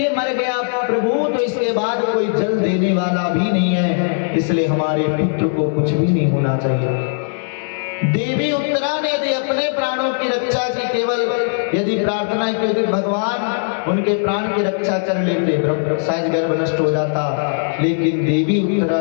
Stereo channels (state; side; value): silent; right; digital silence